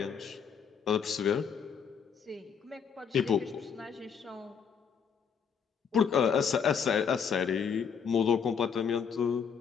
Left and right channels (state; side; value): quieter; right; 6.8 dB